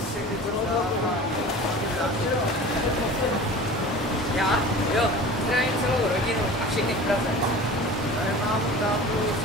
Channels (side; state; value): both; normal; correlation 0.38